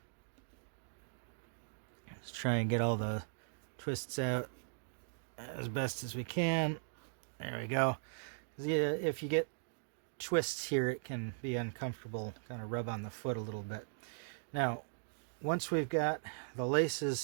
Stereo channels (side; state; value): left; silent; digital silence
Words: let's try and get all the twists out as best as we can. There we go. If you get twists here, it can be uncomfortable, kind of rub on the foot a little bit. Now, once we've got the